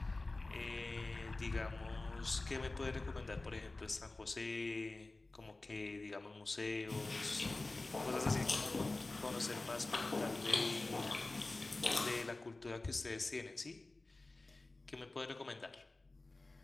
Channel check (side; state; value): right; quieter; 3.1 dB